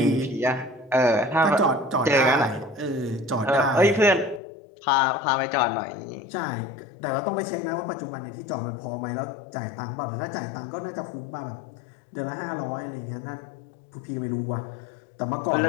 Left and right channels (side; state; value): right; drops out; at 4.4 s